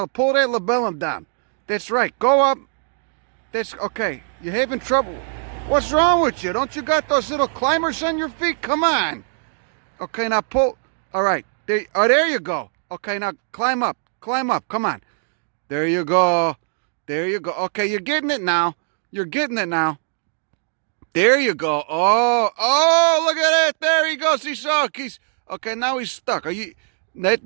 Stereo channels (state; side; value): silent; left; digital silence